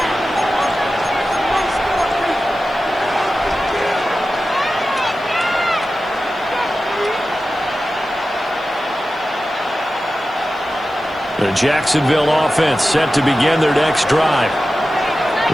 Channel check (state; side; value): noise; right; hiss, 30 dB below the sound